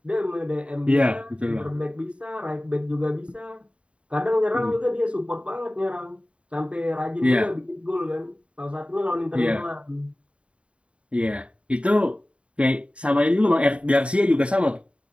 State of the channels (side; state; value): left; late; 0.061 ms